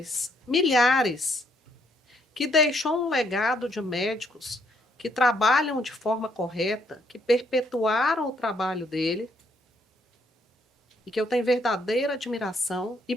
milhares, que deixou um legado de médicos que trabalham de forma correta, que perpetuaram o trabalho dele, e que eu tenho verdadeira admiração, e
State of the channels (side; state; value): both; normal; correlation 0.71